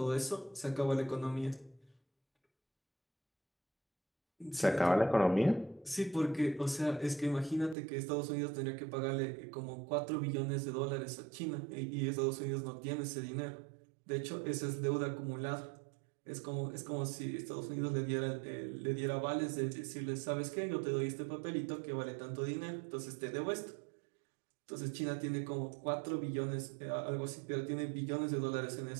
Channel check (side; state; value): left; drops out; at 7.8 s